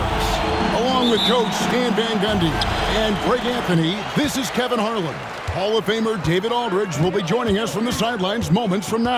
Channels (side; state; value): both; identical; correlation 1.00